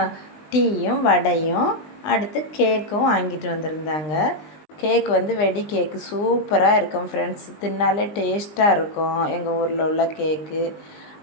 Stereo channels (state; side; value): late; right; 20 ms